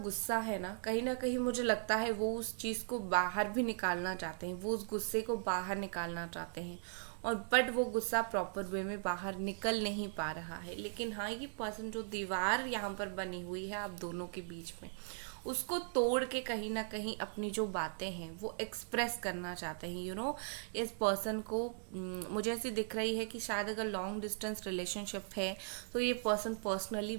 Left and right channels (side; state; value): left; silent; digital silence